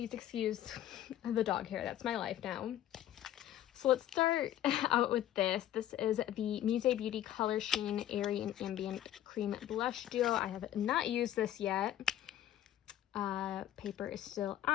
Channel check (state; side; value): quieter; right; 12.2 dB